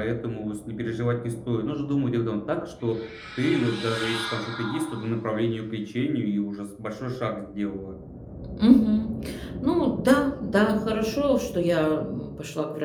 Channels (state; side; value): identical; both; correlation 1.00